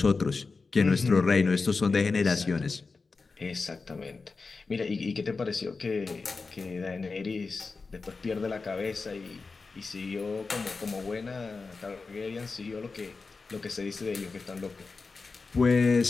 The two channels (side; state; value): right; quieter; 4.2 dB